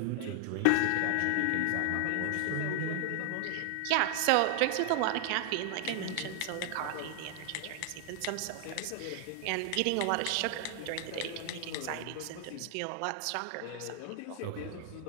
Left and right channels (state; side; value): different; both; correlation 0.00